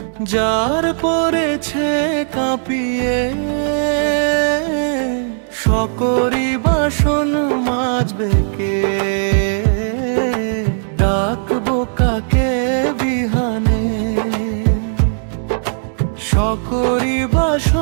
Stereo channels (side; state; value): left; silent; 68 dB below the other